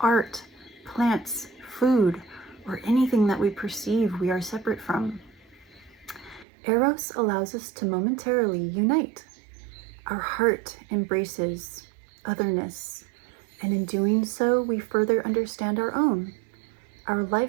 plants, food, or anything that we perceive we are separate from. Eros allows us to momentarily unite. Our heart embraces otherness, and in doing so, we further understand our own. Our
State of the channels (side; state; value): left; drops out; at 6.5 s